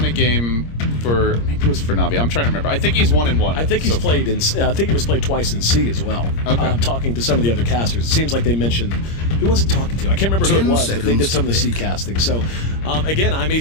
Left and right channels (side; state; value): right; late; 26 ms